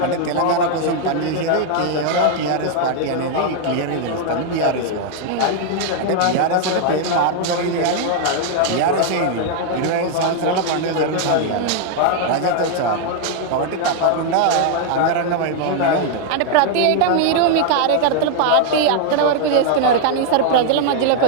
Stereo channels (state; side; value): different; both; correlation 0.00